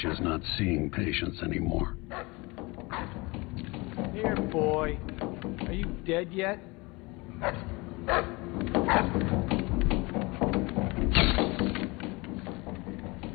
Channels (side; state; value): right; quieter; 25.1 dB